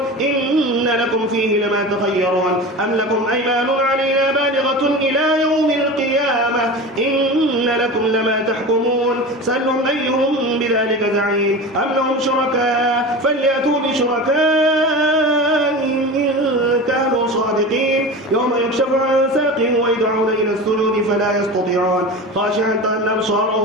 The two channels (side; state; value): both; normal; correlation 0.30